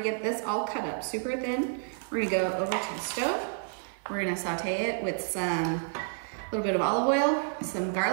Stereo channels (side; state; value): left; silent; digital silence